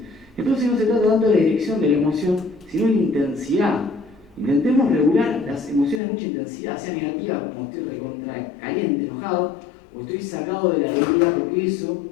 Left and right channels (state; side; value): drops out; right; at 6.0 s